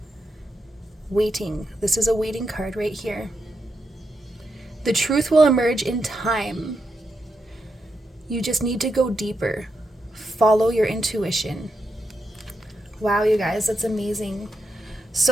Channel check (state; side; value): normal; both; correlation 0.84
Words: Waiting. This is a waiting card right here. The truth will emerge in time. You just need to go deeper. Follow your intuition. Wow, you guys, that's amazing.